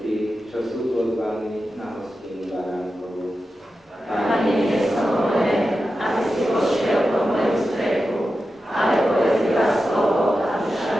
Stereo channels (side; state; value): both; normal; correlation 0.91